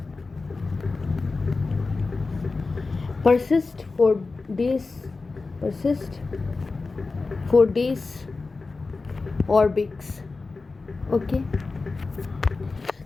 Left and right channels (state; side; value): quieter; right; 3.9 dB